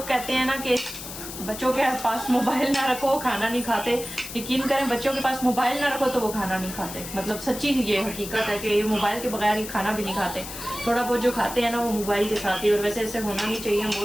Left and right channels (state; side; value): noise; left; hiss, 10 dB below the sound